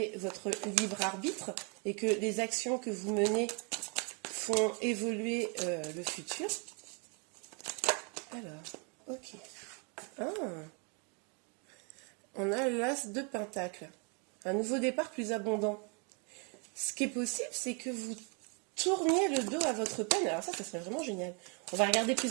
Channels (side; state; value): left; quieter; 35.3 dB